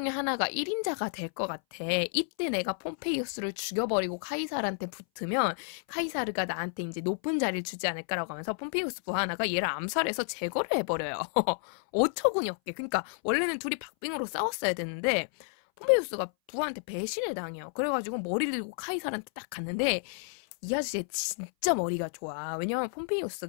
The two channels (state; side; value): silent; right; 57 dB below the other